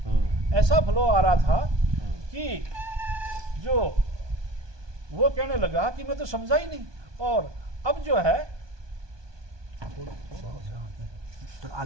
ऐसा फ्लो आ रहा था कि जो वो कहने लगा कि मैं तो समझा ही नहीं। और अब जो है आ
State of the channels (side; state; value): left; late; 1.2 ms